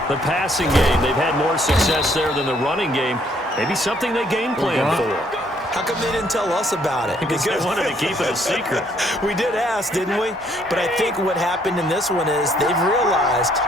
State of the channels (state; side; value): normal; both; correlation 0.67